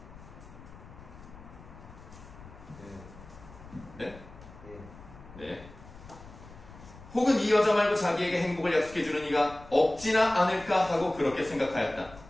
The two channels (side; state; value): left; noise; rumble, 18 dB below the sound